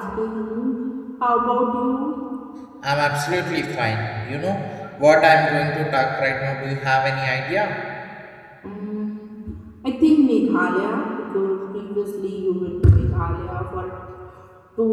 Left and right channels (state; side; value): identical; both; correlation 1.00